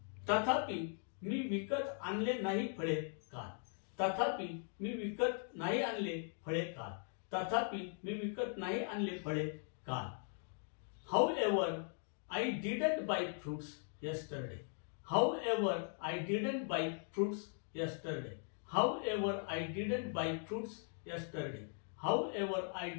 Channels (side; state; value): right; silent; 51 dB below the other